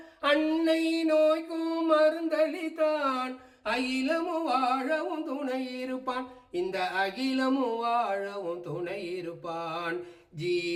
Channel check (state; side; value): identical; both; correlation 1.00